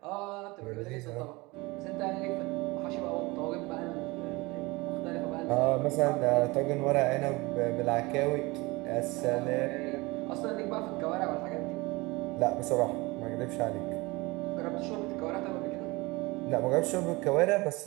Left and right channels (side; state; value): left; quieter; 23.4 dB